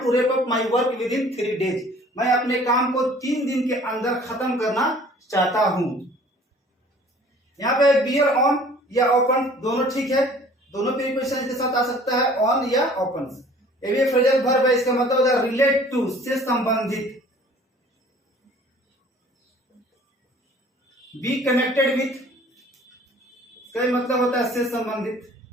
to wrap up my work within 3 days, मैं अपने काम को 3 दिन के अंदर खत्म करना चाहता हूं। यहाँ पे बियर ऑन या ओपन दोनों ठीक है, दोनों प्रीपोजिशन के साथ आ सकता है, ऑन या ओपन। ये भी फ्रेजल वर्ब है, इसका मतलब होता है रिलेट टू, से संबंधित, बी कनेक्टेड विथ, इसका मतलब होता है से संबंधित।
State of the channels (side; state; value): both; normal; correlation 0.51